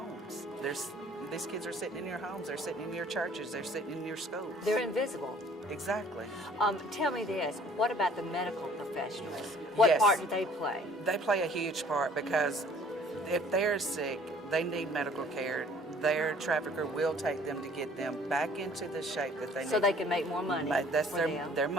These kids are sitting in your homes. They're sitting in your churches. They're sitting in your schools. They're invisible. Exactly. Tell me this. What about the medical professionals? What part do they play? They play a huge part, because if they're sick, they need medical care. Their trafficker will take them to get them back into the shape that they need. So they can make more money. That's their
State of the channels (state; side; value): normal; both; correlation 0.55